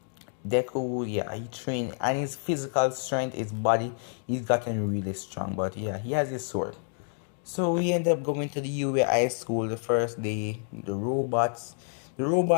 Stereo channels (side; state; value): right; silent; 59 dB below the other